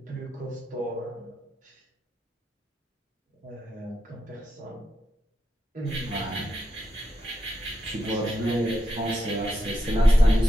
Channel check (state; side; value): normal; both; correlation 0.86